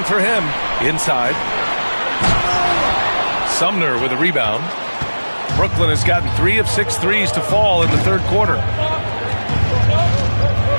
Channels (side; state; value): both; inverted; correlation -1.00